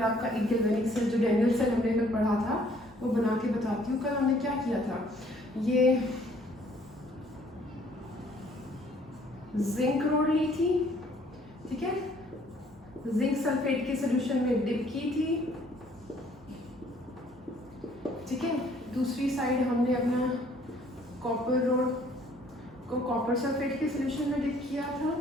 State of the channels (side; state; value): both; normal; correlation 0.61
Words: आपका एक गैल्वेनिक सेल जो डेनियल सेल हमने कल पढ़ा था वो बना के बताती हूँ। कल हमने क्या किया था, ये जिंक रोड ली थी, ठीक है, जिंक सल्फेट के सॉल्यूशन में डिप की थी, ठीक है। दूसरी साइड हमने अपना कॉपर रोड को कॉपर सल्फेट के सॉल्यूशन में डिप किया था,